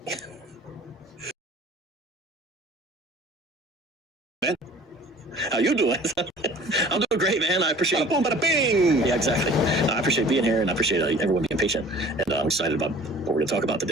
man, how you doing? I'm doing great, man. I appreciate it. Boom, bada bing. Yeah, exactly. I appreciate being here, and I appreciate everyone being patient. And I'm excited about what we're going to talk about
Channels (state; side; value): normal; both; correlation 0.48